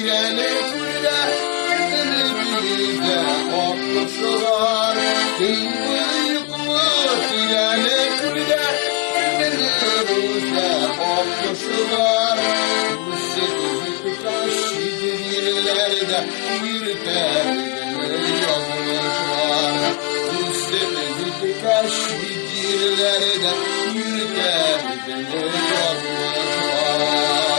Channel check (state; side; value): quieter; right; 28.4 dB